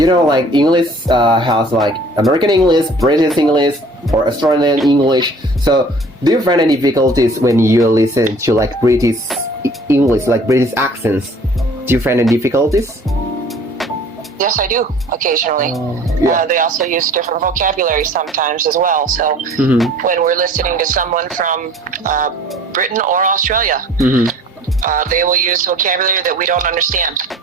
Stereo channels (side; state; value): both; normal; correlation 0.50